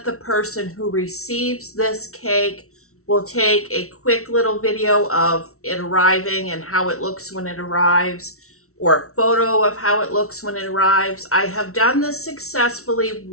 the person who receives this cake will take a quick little video of it arriving and how it looks when it arrives, or a photo of how it looks when it arrives. I have done this successfully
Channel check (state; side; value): late; right; 0.63 ms